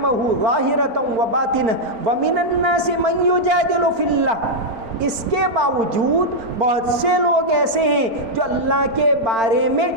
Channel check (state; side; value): late; left; 4.4 ms